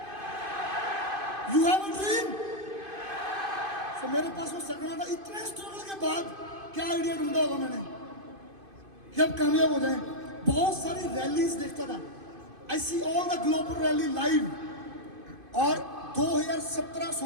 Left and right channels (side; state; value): left; late; 2.5 ms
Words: You have a dream? तो मेरे पास वो सपना था। इतने स्ट्रगल के बाद क्या आइडिया ढूंढा होगा मैंने कि अब कामयाब हो जाए। बहुत सारी रैलीज देखता था, I see all the global rally live. और